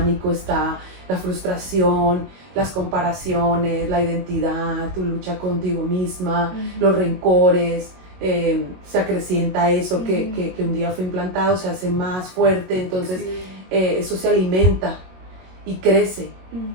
está la frustración, las comparaciones, la identidad, tu lucha contigo misma, los rencores, se acrecienta eso que un día fue implantado, se hace más fuerte, entonces eso se alimenta y crece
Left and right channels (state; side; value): late; left; 22 ms